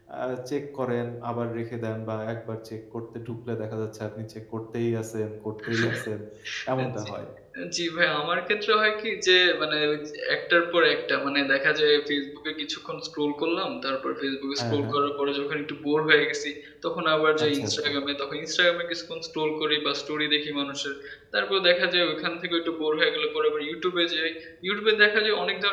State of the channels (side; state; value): both; identical; correlation 1.00